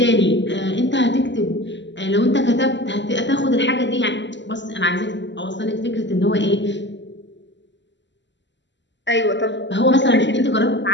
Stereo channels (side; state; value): right; late; 0.53 ms